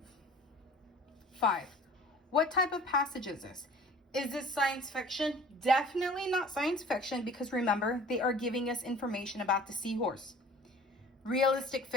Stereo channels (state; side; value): normal; both; correlation 0.47